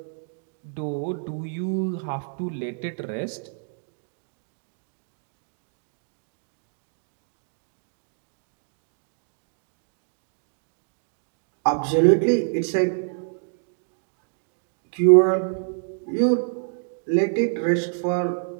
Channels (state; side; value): silent; left; digital silence